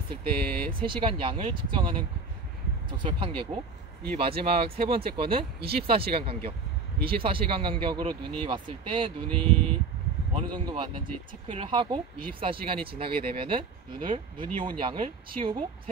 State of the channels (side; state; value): left; quieter; 4.3 dB